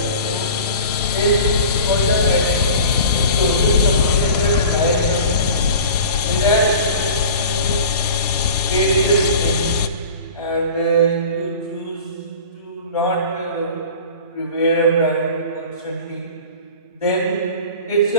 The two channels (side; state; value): both; inverted; correlation -0.40